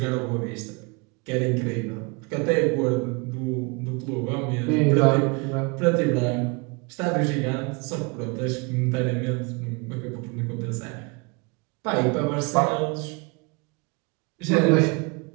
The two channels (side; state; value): left; quieter; 30.3 dB